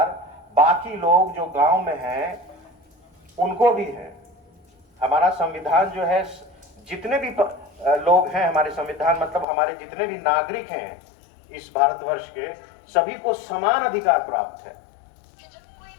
बाकी लोग जो गांव में हैं उनको भी है। हमारा संविधान जो है, जितने भी लोग हैं हमारे संविधान, मतलब हमारे जितने भी नागरिक हैं इस भारतवर्ष के, सभी को समान अधिकार प्राप्त है।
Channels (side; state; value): right; drops out; at 9.5 s